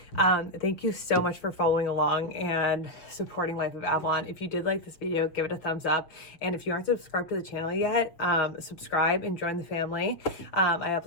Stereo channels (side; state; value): right; late; 6.6 ms